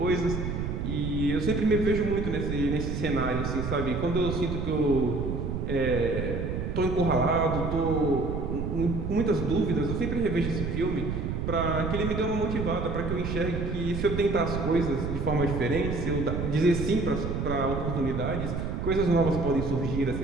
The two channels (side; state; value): right; noise; rumble, 3 dB below the sound